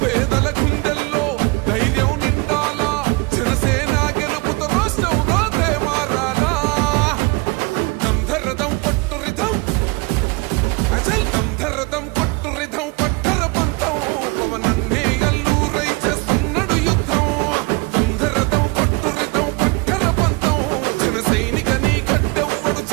పేదల గుండెల్లో ధైర్యం నిండాలా జనసేన గెలుపుతో రాష్ట్రం రాతే మారాలా దంధరదం కొట్టు రిధం అజల్ దంధరదం కొట్టు రిధం పట్టర పంతం పవనన్నే అల్లూరై చేస్తున్నాడు యుద్ధం దంధరదం కొట్టు రిధం పట్టర పంతం జన సైనిక నీ కట్టెవ్వడు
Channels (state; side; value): quieter; left; 27.1 dB